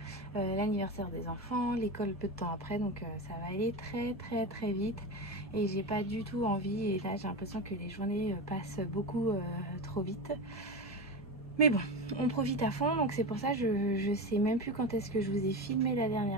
l'anniversaire des enfants, l'école peu de temps après, donc ça va aller très vite et j'ai pas du tout envie. Et là j'ai l'impression que les journées passent beaucoup trop vite, mais bon, on profite à fond. Donc c'est pour ça je sais même plus quand est-ce que je vous ai filmé la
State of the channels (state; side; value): normal; both; correlation 0.21